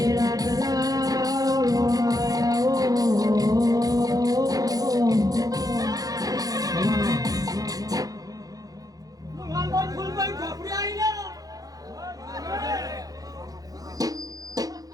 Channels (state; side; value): late; left; 0.18 ms